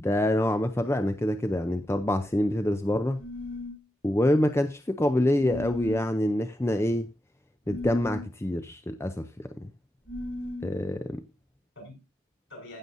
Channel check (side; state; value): both; normal; correlation 0.87